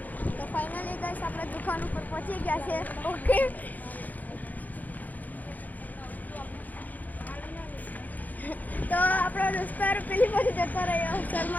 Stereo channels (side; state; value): right; late; 0.081 ms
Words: તો ફાઇનલી ગાઈસ આપણે દુકાન ઉપર પહોંચી ગયા છે. ઓકે, તો આપણો દોસ્તાર પેલી બાજુ જતો રહ્યો